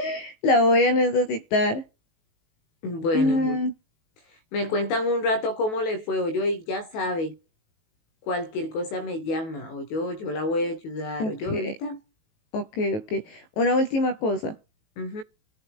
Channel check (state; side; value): late; right; 19 ms